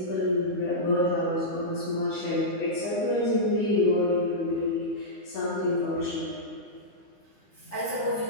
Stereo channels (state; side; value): late; right; 9.8 ms